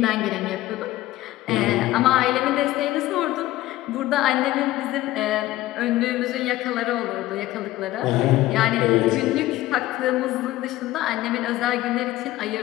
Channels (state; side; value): quieter; right; 16.2 dB